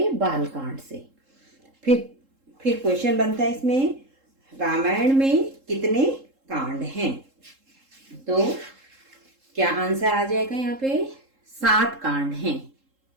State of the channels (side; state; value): left; late; 3.7 ms